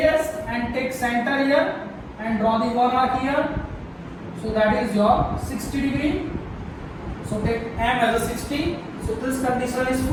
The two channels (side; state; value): both; identical; correlation 1.00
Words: and take center here and draw the one arc here. So that is your 60 degree. So take M as a 60. So this condition is